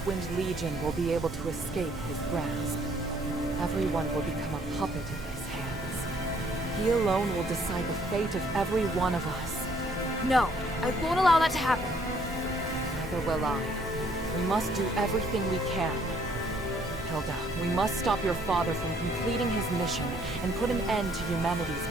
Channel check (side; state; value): both; normal; correlation 0.64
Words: Legion will be able to escape his grasp. Everyone will become a puppet in his hands. He alone will decide the fate of every one of us. No, I won't allow that to happen. Neither will I. We must do everything we can. Hilda, we must stop your father from completing his mission and put an end to humanity's